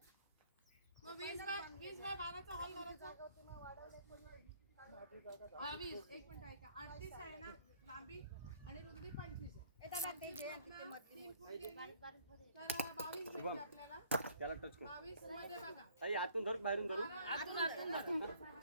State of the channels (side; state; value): both; inverted; correlation -0.60